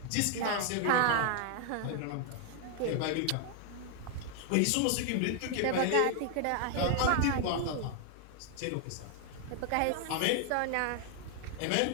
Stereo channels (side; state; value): both; different; correlation 0.00